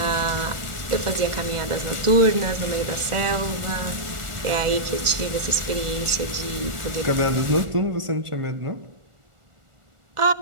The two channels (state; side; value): late; left; 1.4 ms